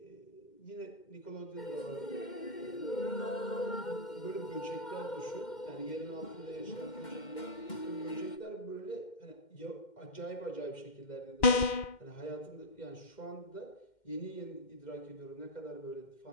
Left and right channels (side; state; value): right; late; 2.1 ms